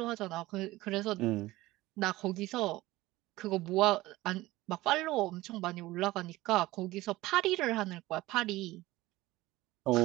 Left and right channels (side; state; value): left; quieter; 18.3 dB